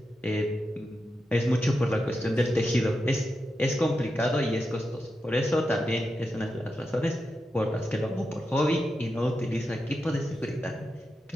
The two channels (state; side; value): normal; both; correlation 0.88